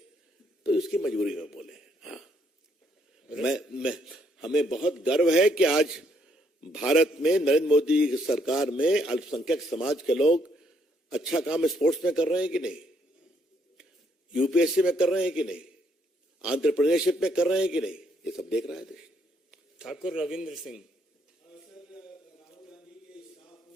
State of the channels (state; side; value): normal; both; correlation 0.71